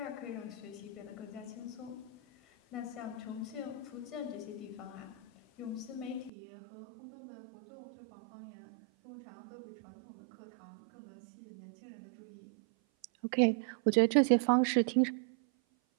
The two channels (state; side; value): drops out; left; at 6.3 s